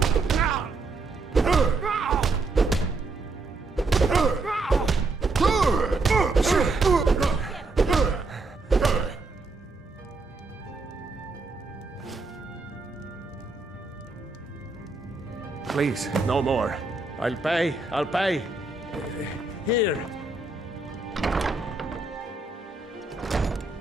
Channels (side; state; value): left; quieter; 3.6 dB